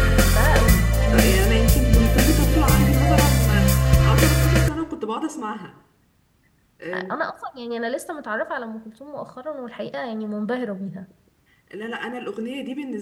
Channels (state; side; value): identical; both; correlation 1.00